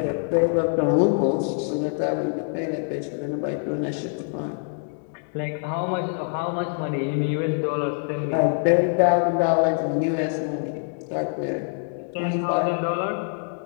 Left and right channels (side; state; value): right; silent; 58 dB below the other